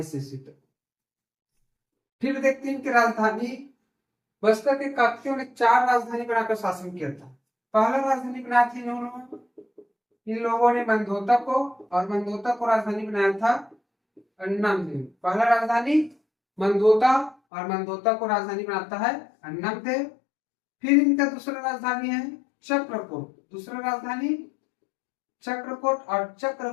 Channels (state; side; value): drops out; right; at 17.4 s